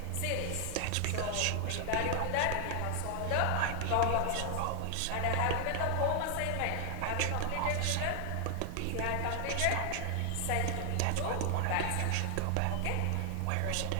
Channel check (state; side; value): different; both; correlation 0.00